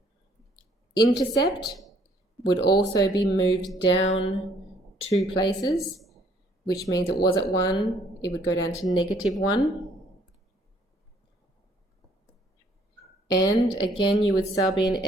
intercept, would also be moved down 2 places, which means it was at 1, it would go down to -1. And again, you would sub in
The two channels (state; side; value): normal; both; correlation 0.63